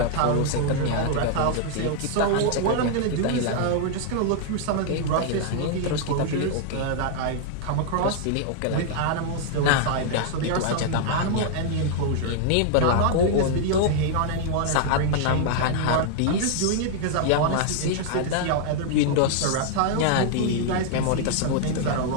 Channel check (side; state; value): both; different; correlation -0.01